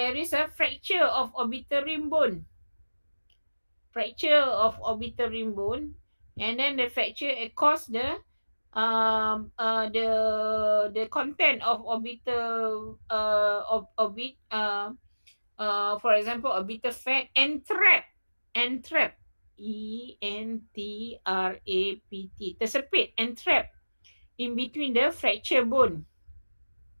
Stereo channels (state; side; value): inverted; both; correlation -1.00